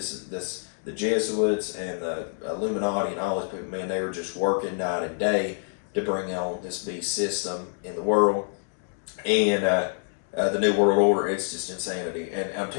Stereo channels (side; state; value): right; silent; digital silence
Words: The Jesuits and the Illuminati and all these people, man, they were just working night and day to bring on this beast system in the world, and the New World Order. It's just insanity. And I'm